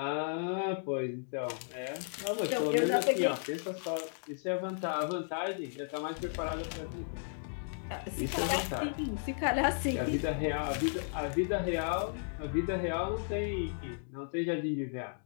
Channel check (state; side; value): silent; right; digital silence